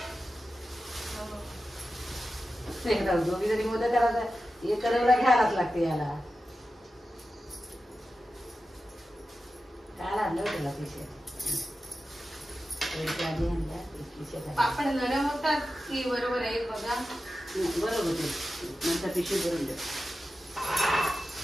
दोघी जरी मोदक करायचा हे करायला घ्यायलाच लागते याला. काय आणलं त्याला पैसे आधी आणल्या. पापड नरम होतात की बरोबर आहे बघा. बरोबर होते नंतर पिशवी भरून द्या.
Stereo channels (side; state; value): both; normal; correlation 0.92